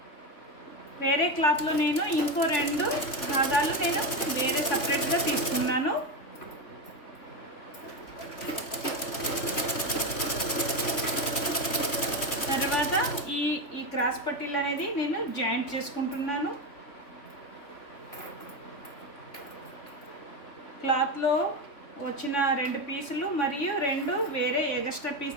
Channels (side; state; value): right; late; 3.2 ms